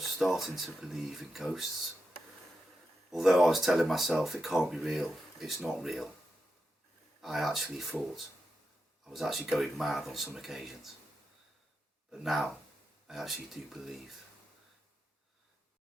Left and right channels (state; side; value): normal; both; correlation 0.88